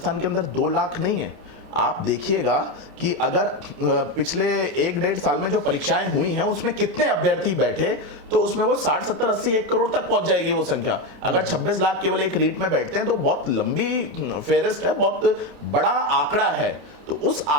के अंदर 2 लाख नहीं है। आप देखिएगा कि अगर पिछले 1-1.5 साल में जो परीक्षाएं हुई हैं उसमें कितने अभ्यर्थी बैठे, तो उसमें वो 60, 70, 80, 1 करोड़ तक पहुंच जाएगी वो संख्या। अगर 26 लाख केवल एक रीट में बैठते हैं तो बहुत लंबी फेरिस्ट है, बहुत बड़ा आंकड़ा है। तो उस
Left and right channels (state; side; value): late; left; 30 ms